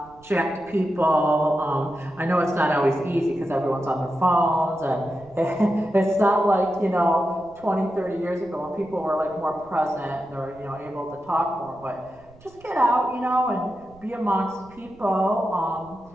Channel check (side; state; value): right; noise; rumble, 25 dB below the sound